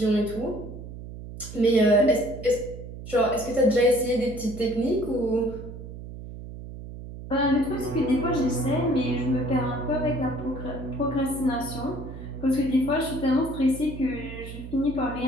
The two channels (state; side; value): noise; right; hum, 12 dB below the sound